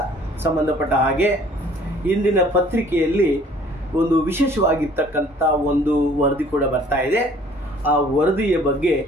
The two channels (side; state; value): both; normal; correlation 0.55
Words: ಸಂಬಂಧಪಟ್ಟ ಹಾಗೆ ಇಂದಿನ ಪತ್ರಿಕೆಯಲ್ಲಿ ಒಂದು ವಿಶೇಷವಾಗಿರ್ತಕ್ಕಂಥ ಒಂದು ವರದಿ ಕೂಡ ಬರ್ತಾ ಇದೆ. ಆ ವರದಿಯ ಬಗ್ಗೆ